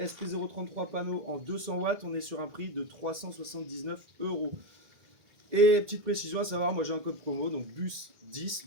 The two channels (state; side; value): late; left; 1.8 ms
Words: panneaux en 200 watts, on est sur un prix de 379 €. Et petite précision à savoir, moi j'ai un code promo, donc BUS10,